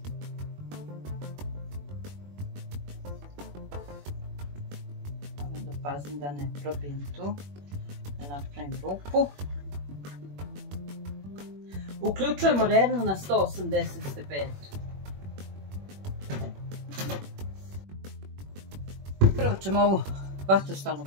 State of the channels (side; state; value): left; late; 21 ms